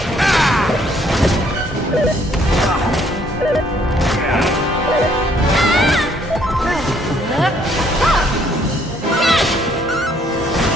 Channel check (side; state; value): both; normal; correlation 0.65